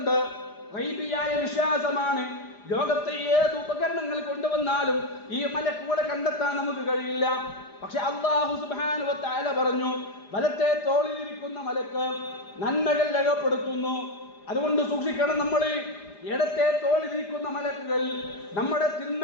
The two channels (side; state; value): right; late; 4.9 ms